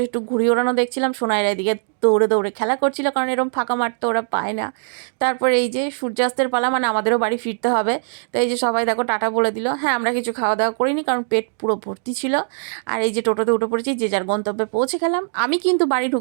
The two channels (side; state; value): left; silent; digital silence